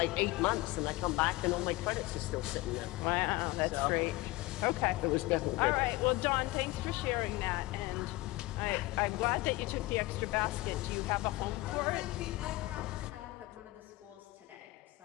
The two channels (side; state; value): right; quieter; 20.0 dB